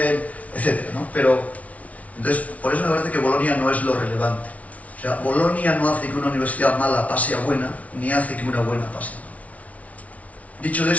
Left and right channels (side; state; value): right; late; 0.068 ms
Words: etcétera, ¿no? Pero, entonces, por eso me parece que Bolonia no es lo relevante. O sea, Bolonia no hace que una universidad mala pase a buena, ni hace que una buena pase a mala. Dicho